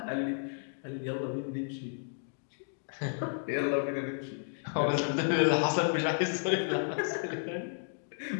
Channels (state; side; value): silent; right; digital silence